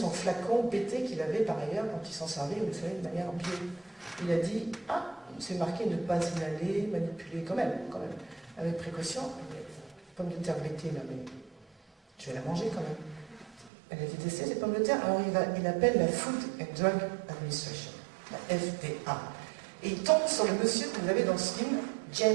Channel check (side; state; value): left; drops out; at 13.7 s